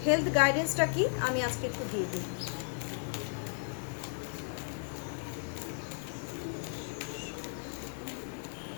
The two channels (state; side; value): silent; right; 55 dB below the other